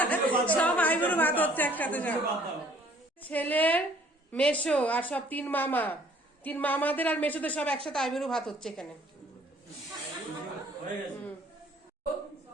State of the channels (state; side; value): normal; both; correlation 0.57